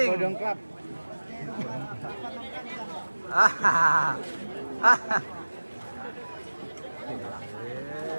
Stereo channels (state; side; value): inverted; both; correlation -1.00